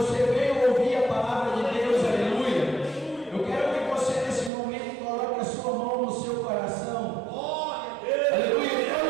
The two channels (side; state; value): left; drops out; at 4.5 s